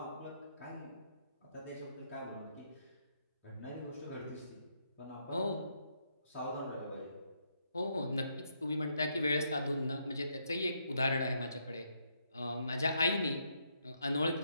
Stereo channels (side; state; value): both; inverted; correlation -0.76